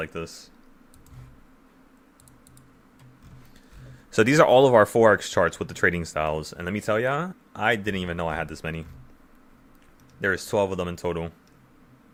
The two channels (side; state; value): both; identical; correlation 1.00